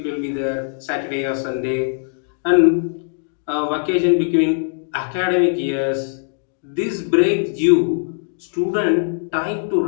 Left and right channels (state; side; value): silent; right; digital silence